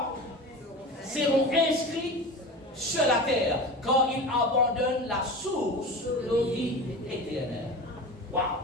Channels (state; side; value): normal; both; correlation 0.31